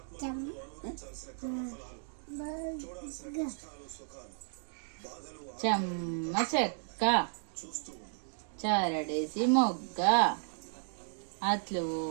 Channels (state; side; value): silent; left; digital silence